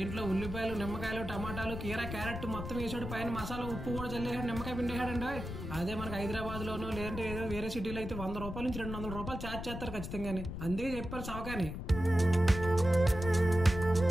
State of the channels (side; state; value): left; noise; rumble, 7 dB below the sound